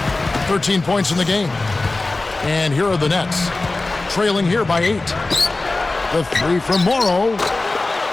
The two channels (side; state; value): right; quieter; 3.2 dB